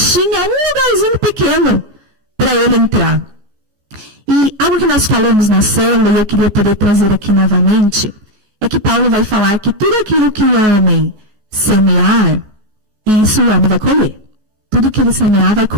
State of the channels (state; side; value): late; left; 14 ms